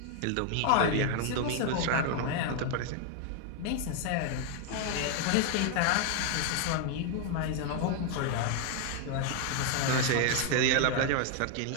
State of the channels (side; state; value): both; different; correlation 0.01